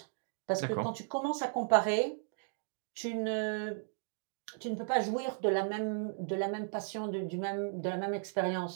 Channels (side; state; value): left; silent; digital silence